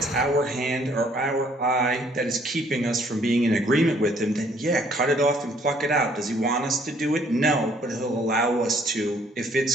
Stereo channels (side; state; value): both; normal; correlation 0.62